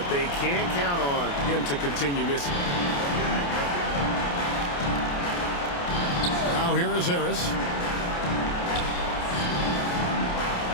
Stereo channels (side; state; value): right; late; 28 ms